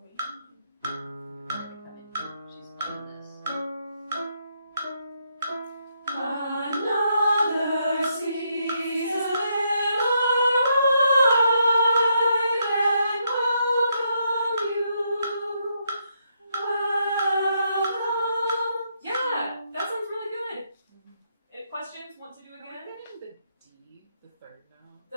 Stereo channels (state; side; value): inverted; both; correlation -0.77